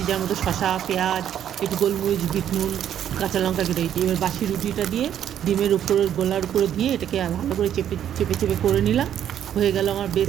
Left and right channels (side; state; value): left; quieter; 10.1 dB